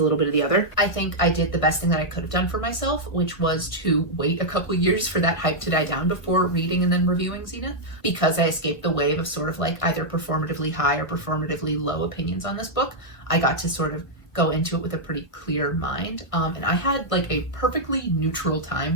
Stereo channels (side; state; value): right; late; 1.5 ms